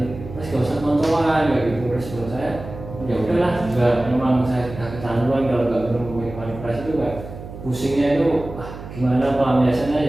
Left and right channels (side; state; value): right; noise; hum, 12 dB below the sound